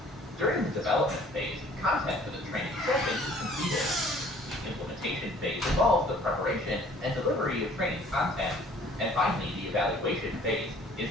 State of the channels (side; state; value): both; normal; correlation 0.54